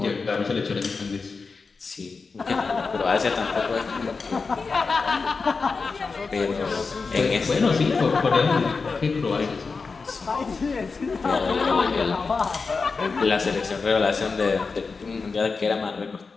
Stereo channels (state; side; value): quieter; right; 4.5 dB